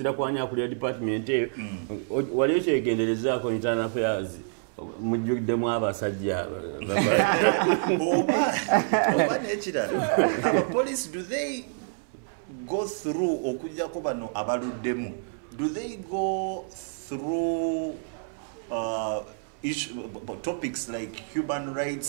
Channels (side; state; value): left; silent; 60 dB below the other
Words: kwani akulira department eyo waliyo kyegenderezaako internal affairs mujjuddemu abasajja oba n'ekirala abapolice do they go through okujjako bano abaluddemu do they go through topics like human